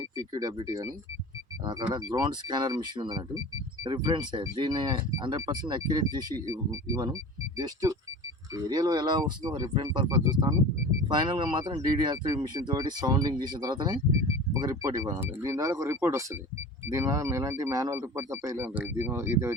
PQWT కానీ అక్కడ గ్రౌండ్ స్కానర్ మిషన్ ఉంది అన్నట్టు. రిఫరెన్సే దీన్ని 100% అక్యురేట్ చేసి ఇవ్వను. జస్ట్ ఏరియాలో ఎలా వస్తుందో రిఫరెన్స్ పర్పస్ చూస్తాను. ఫైనల్గా మాత్రం DDR3 మిషన్ తోటి సౌండింగ్ చేసిన తర్వాతనే ఒక రిపోర్ట్ ఇవ్వాలి. దీని ద్వారా ఒక రిపోర్ట్ వస్తుంది. దీనివల్ల ఎలాంటి మాన్యువల్ రిపోర్ట్ తప్ప ఇలా ఉంటుంది. ఇది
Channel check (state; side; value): normal; both; correlation 0.37